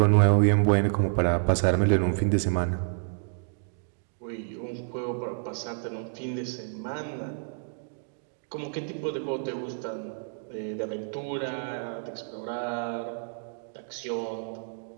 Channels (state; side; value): silent; left; digital silence